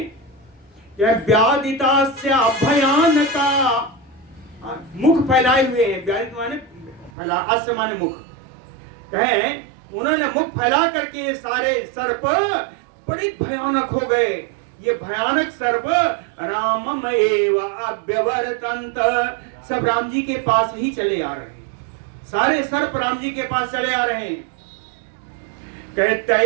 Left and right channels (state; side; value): drops out; left; at 7.1 s